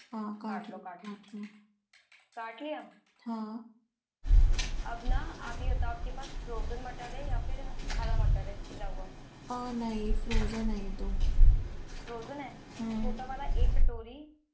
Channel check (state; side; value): identical; both; correlation 1.00